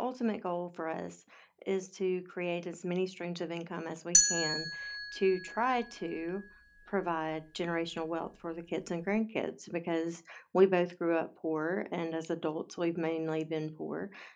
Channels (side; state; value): both; identical; correlation 1.00